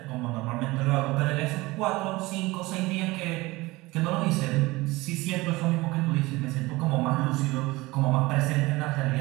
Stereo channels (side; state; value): left; quieter; 21.1 dB